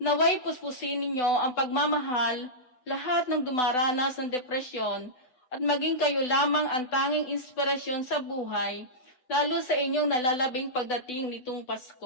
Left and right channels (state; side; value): late; right; 7.9 ms